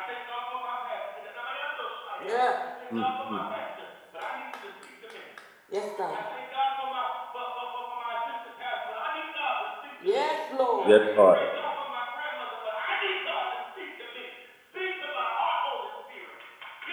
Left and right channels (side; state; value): both; identical; correlation 1.00